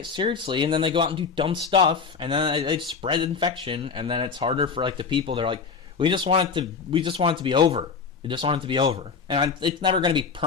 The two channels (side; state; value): right; quieter; 5.4 dB